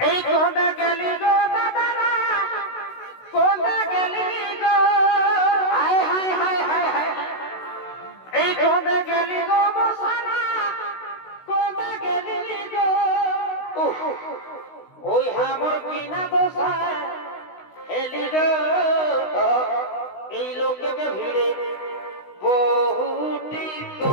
এই কোতে গেলি গো দাদারা কোতে গেলি গো হায় হায় হায় হায় হায় এই কোতে গেলি গো বসানা কোতে গেলি গো ওই হামর কিনা দোষা এলি গো এই লোককে ভিড়ে বহুটি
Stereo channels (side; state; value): right; late; 16 ms